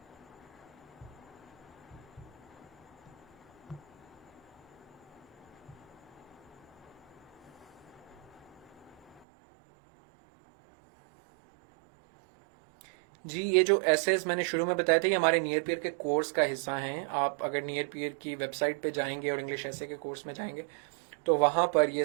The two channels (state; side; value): drops out; left; at 9.2 s